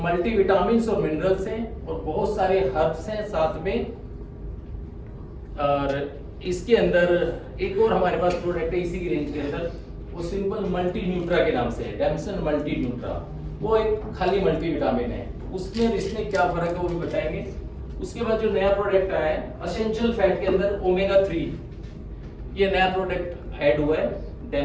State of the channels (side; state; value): both; identical; correlation 1.00